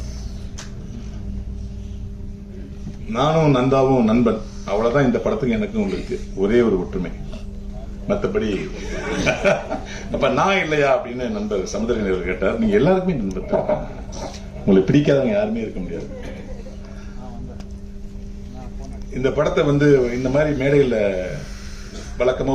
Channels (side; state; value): both; identical; correlation 1.00